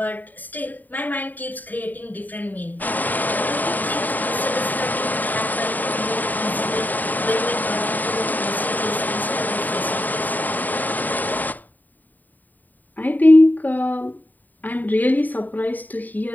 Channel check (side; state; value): right; late; 0.085 ms